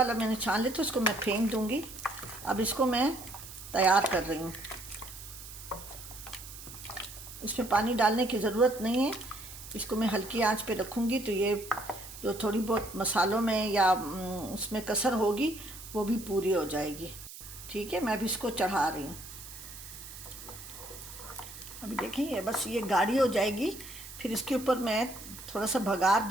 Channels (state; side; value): noise; right; hiss, 14 dB below the sound